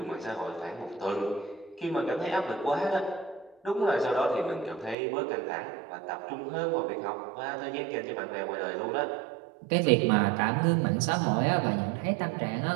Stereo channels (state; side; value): drops out; left; at 5.0 s